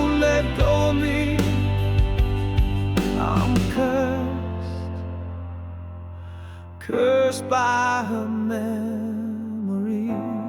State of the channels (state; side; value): identical; both; correlation 1.00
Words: let go of me. I'm cursed by her memory.